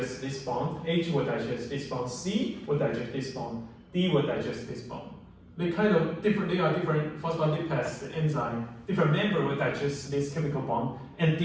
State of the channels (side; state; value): both; identical; correlation 1.00